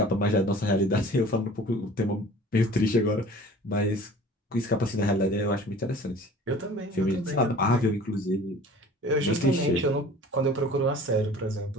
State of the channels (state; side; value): normal; both; correlation 0.45